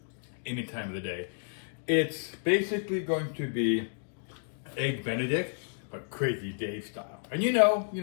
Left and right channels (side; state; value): right; silent; digital silence